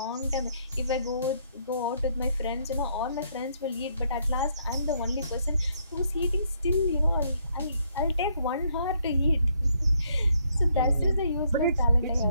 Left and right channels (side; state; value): both; inverted; correlation -0.71